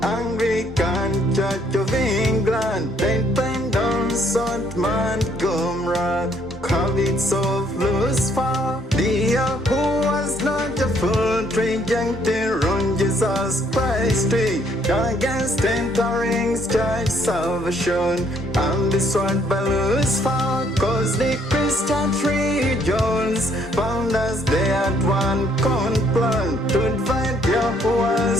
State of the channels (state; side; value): normal; both; correlation 0.67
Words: Anglican Church of England, Dependence on Montgomery, habits of Lucifer, the who was not a full trijuncte on Jesus Christ, against entering church salvation, and destroyed by Lucifer, cause the Christian regions found as they had one plan to divide